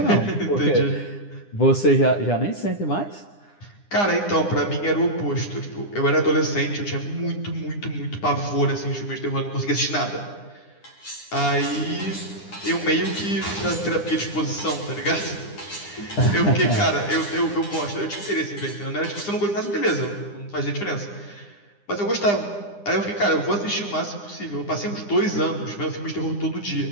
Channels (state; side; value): late; right; 9.9 ms